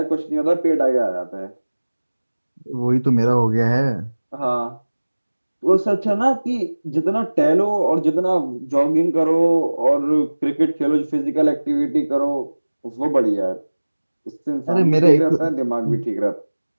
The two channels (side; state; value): both; inverted; correlation -1.00